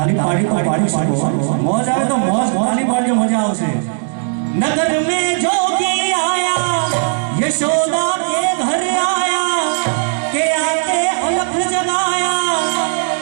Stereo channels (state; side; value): silent; left; digital silence